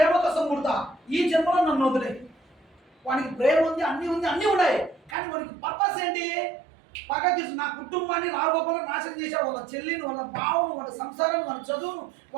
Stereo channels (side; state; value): left; drops out; at 5.2 s